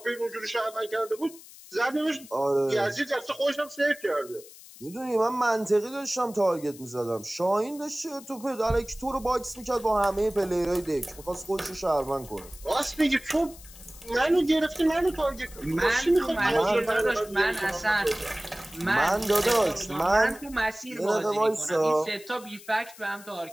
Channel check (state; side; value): noise; left; hiss, 19 dB below the sound